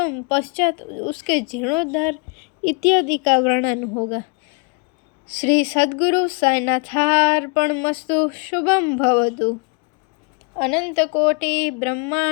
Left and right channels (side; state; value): right; quieter; 33.9 dB